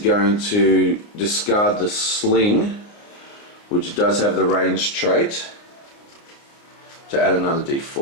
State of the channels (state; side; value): late; right; 29 ms